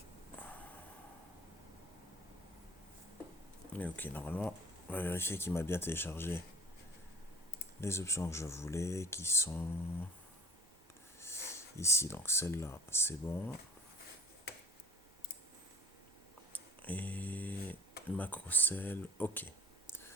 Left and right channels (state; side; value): normal; both; correlation 0.47